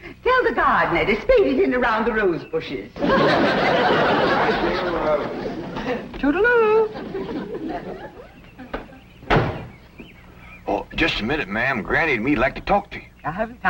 Tell the gardener to spade it in around the rose bushes. Toodaloo. Oh, just a minute, ma'am. Granny and me'd like to talk to you. I haven't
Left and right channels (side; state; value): both; identical; correlation 1.00